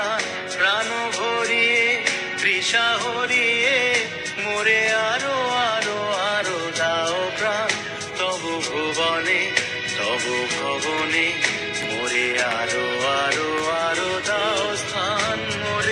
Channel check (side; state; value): both; identical; correlation 1.00